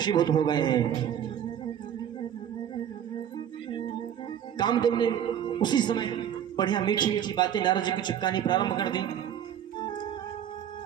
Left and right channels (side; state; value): left; quieter; 9.7 dB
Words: हो गए हैं। कामदेव ने उसी समय बढ़िया मीठी मीठी बातें नारद जी को चिपकानी प्रारंभ कर दी।